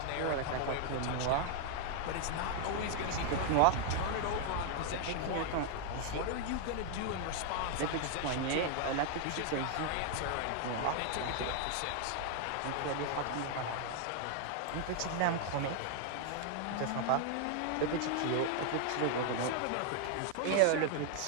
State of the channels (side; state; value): both; different; correlation 0.00